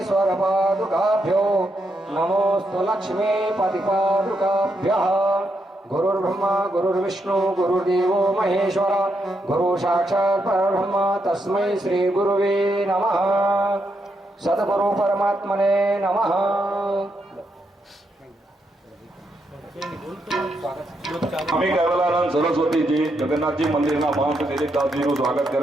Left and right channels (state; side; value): normal; both; correlation 0.80